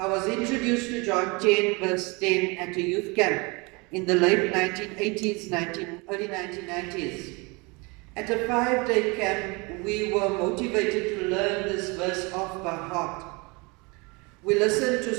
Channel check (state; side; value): quieter; left; 27.7 dB